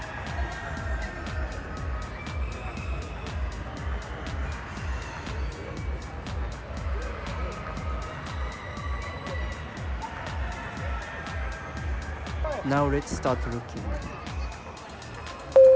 Now let's start looking.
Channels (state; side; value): identical; both; correlation 1.00